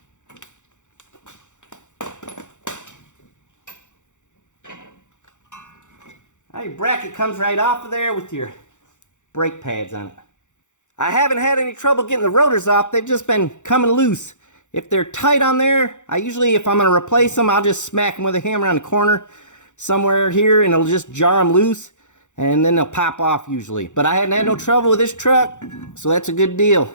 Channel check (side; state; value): right; late; 0.85 ms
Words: Now your bracket comes right off of there with your brake pads on it. I haven't had any trouble getting the rotors off. They've just been coming loose. If they're tight on there, I usually, if I'm going to replace them, I'll just smack them with a hammer on the corner somewhere here, and it'll just jar them loose, and then they'll pop off usually. But I hadn't had no trouble with this truck, so that's a good deal.